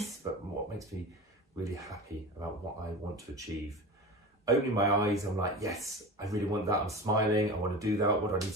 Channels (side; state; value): both; normal; correlation 0.31